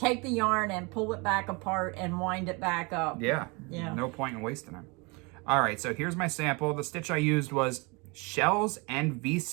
the yarn and pull it back apart and wind it back up. Yeah. No point in wasting it. All right, so here's my sample. The stitch I used was Shells and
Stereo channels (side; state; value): left; quieter; 28.7 dB